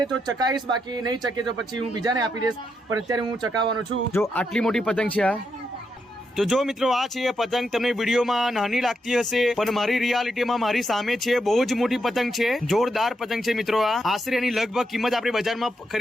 તો ચકાઈશ, બાકી નહીં ચકે તો પછી હું બીજાને આપી દઈશ. પણ અત્યારે હું ચકાવવાનો છું. જો આટલી મોટી પતંગ છે આ. તો જો મિત્રો આ છે પતંગ, તમને વિડીયોમાં નાની લાગતી હશે પણ મારી રિયાલિટીમાં મારી સામે છે બહુ જ મોટી પતંગ છે. જોરદાર પતંગ છે મિત્રો. આ આશરે એની લગભગ કિંમત આપણે બજારમાં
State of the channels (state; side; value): normal; both; correlation 0.82